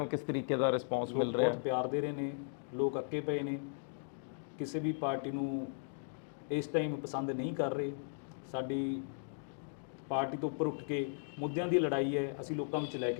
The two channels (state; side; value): silent; right; digital silence